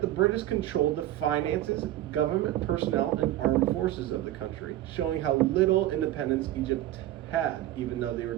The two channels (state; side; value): quieter; left; 14.2 dB